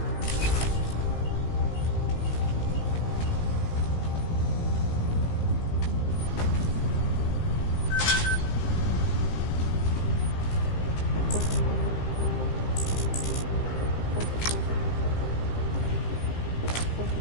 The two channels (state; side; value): late; right; 18 ms